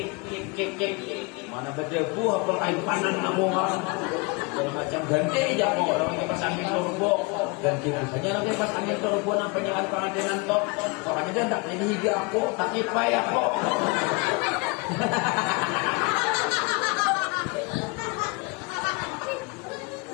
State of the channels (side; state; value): right; quieter; 28.7 dB